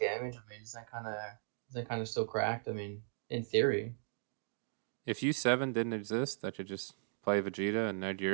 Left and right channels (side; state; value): left; silent; digital silence